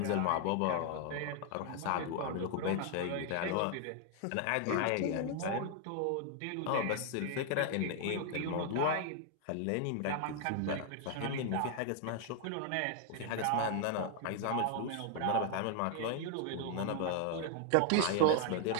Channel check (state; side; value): different; both; correlation 0.00